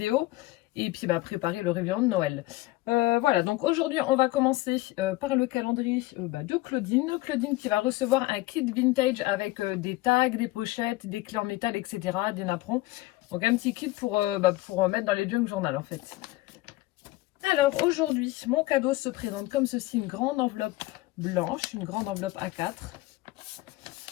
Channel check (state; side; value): quieter; right; 18.5 dB